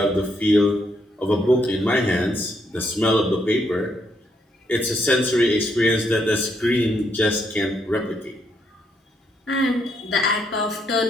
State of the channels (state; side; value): normal; both; correlation 0.75